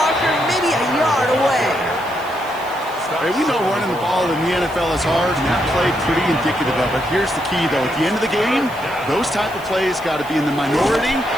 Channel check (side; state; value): right; noise; hiss, 22 dB below the sound